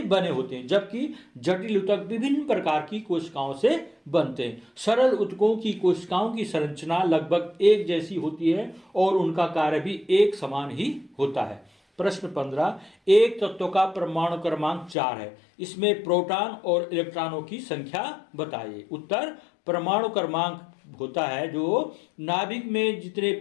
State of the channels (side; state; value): right; drops out; at 15.0 s